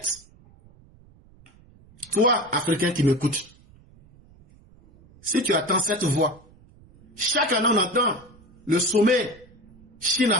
Toi, Africain qui m'écoutes, si tu attends cette voix, chaque année on entend le sommet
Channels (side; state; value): right; noise; rumble, 26 dB below the sound